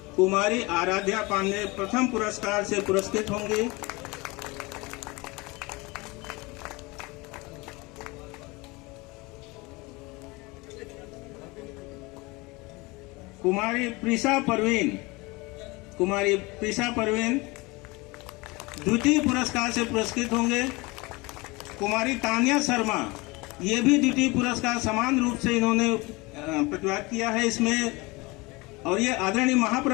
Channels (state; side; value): quieter; right; 24.4 dB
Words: कुमारी आराध्या पांडे प्रथम पुरस्कार से पुरस्कृत होंगी। कुमारी प्रिसा परवीन द्वितीय पुरस्कार से पुरस्कृत होंगे। कुमारी तानिया शर्मा, ये भी द्वितीय पुरस्कार समान रूप से इन्होंने प्रतिभाग किया है इसमें, और ये आदरणीय